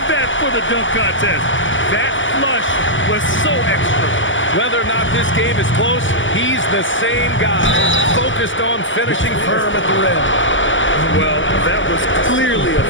that for the dunk contest. That flush was so extra. Whether or not this game is close, he's the same guy, focused on finishing firm at the rim. Well, that was clearly a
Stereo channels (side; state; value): right; late; 0.55 ms